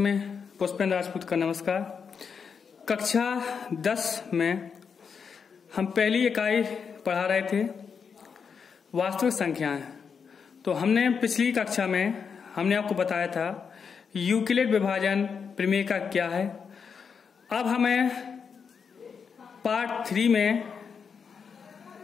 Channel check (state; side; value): quieter; right; 6.2 dB